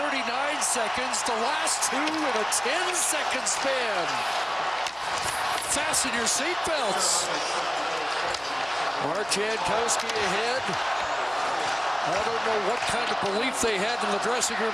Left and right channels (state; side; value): noise; right; hum, 24 dB below the sound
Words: seconds, the last 2 in a 10-second span. Fasten your seatbelts. Mark Jankowski ahead. I don't know what kind of belief they had in the dressing room